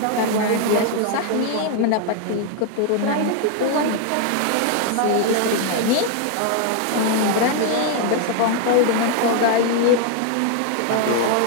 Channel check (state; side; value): different; both; correlation 0.00